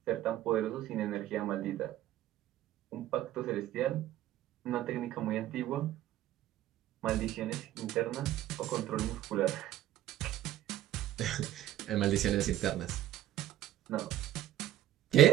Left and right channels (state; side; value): quieter; left; 13.1 dB